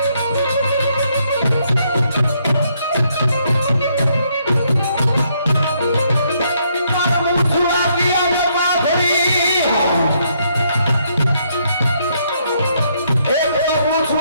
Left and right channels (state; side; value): inverted; both; correlation -0.72